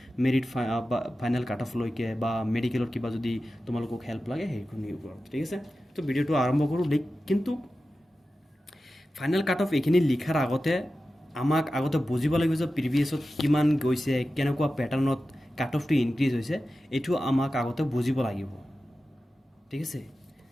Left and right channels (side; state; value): both; normal; correlation 0.93